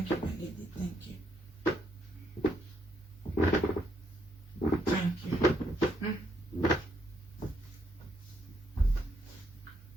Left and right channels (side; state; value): both; normal; correlation 0.74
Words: you, my lady. Thank you. Thank you.